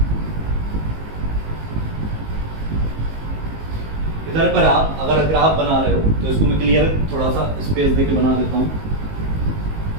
इधर पर आप अगर ग्राफ बना रहे हो तो इसको मैं क्लियर थोड़ा सा स्पेस देके बना देता हूं।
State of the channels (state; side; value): late; left; 19 ms